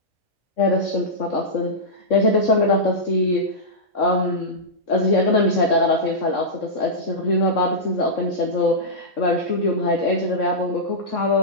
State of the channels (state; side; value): normal; both; correlation -0.13